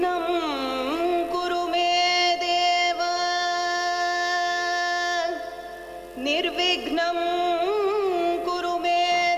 कुरु मे देव निर्विघ्नं कुरु मे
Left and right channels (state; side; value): identical; both; correlation 1.00